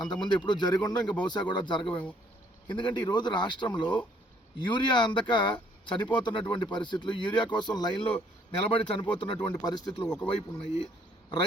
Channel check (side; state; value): both; normal; correlation 0.64